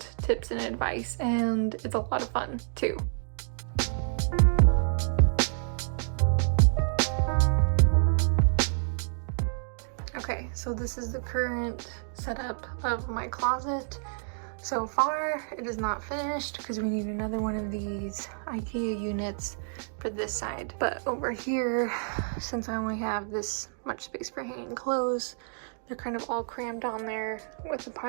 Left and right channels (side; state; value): left; silent; digital silence